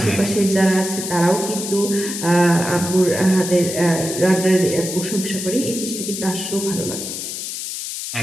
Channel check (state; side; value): noise; left; hiss, 6 dB below the sound